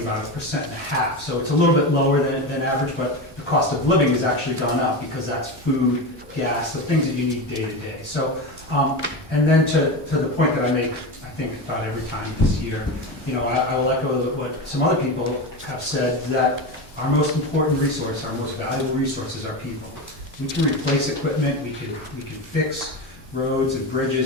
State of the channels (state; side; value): normal; both; correlation 0.21